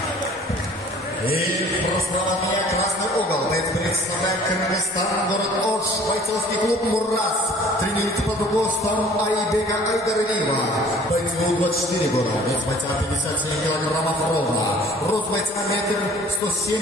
И справа от меня красный угол. Боец представляет Кыргызстан, город Ош, бойцовский клуб Мурас. Тренируется под руководством Айбека Айдаралиева. Бойцу 24 года. Вес бойца 57 килограммов ровно. Рост бойца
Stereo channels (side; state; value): both; normal; correlation 0.51